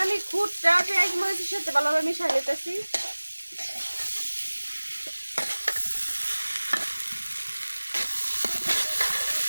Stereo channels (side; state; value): both; inverted; correlation -1.00